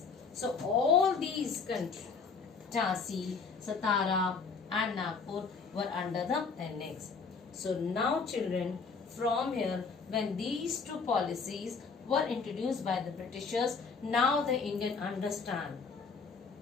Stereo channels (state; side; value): quieter; right; 5.0 dB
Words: So all these countries, Jhansi, Satara and Nagpur were under the annex. So now children, from here, when these two policies were introduced by the Britishers, now the Indian understand.